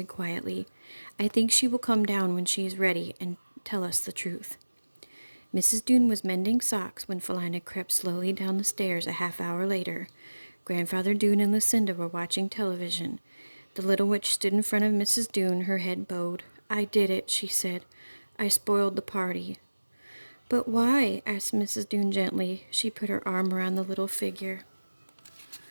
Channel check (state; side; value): inverted; both; correlation -1.00